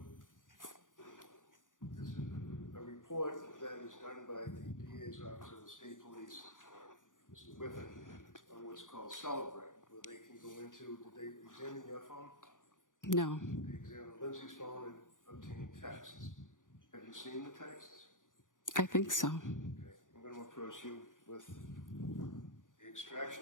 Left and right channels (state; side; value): late; right; 0.88 ms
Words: This is a report that is done by the DA's Office of the State Police, Mr. Whiffen, on what's called Celebrate, where they can go into, did they examine your phone? No. They examined Lindsay's phone and obtained texts. Have you seen the texts? I think so. Okay, I'm going to approach you with the